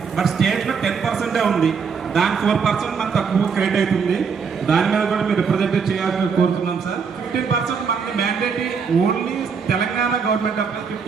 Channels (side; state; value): left; quieter; 5.9 dB